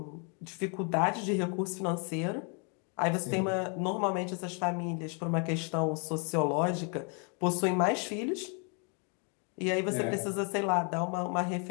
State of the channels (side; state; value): right; quieter; 37.5 dB